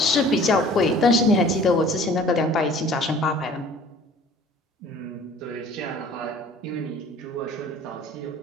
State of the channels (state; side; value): normal; both; correlation 0.49